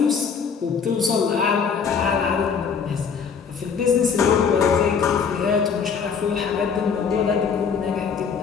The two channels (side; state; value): right; quieter; 6.2 dB